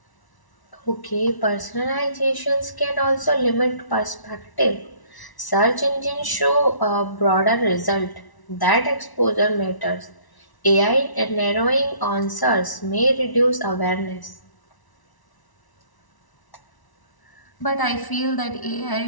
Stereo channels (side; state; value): right; late; 1.0 ms